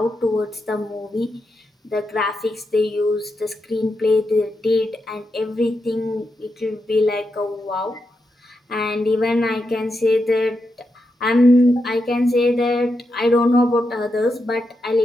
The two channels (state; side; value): normal; both; correlation 0.85